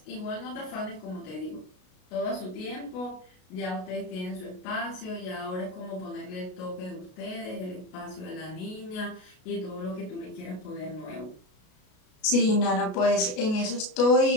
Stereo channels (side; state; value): right; late; 33 ms